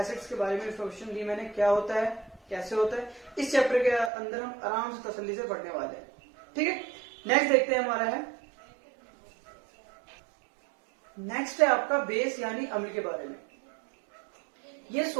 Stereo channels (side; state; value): left; drops out; at 4.1 s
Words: के बारे में इंफॉर्मेशन दी मैंने, क्या होता है, कैसे होता है। इस चैप्टर के अंदर हम आराम से तसल्ली से पढ़ने वाले हैं। ठीक है, नेक्स्ट देखते हैं हमारा है, नेक्स्ट है आपका बेस यानी अम्ल के बारे में। ये